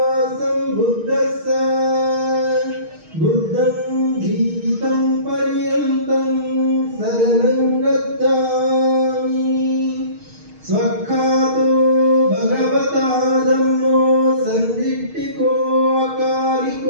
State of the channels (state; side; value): late; left; 6.4 ms